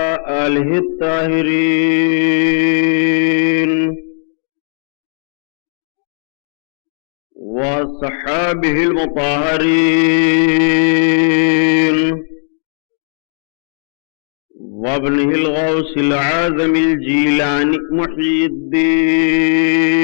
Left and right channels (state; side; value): silent; right; digital silence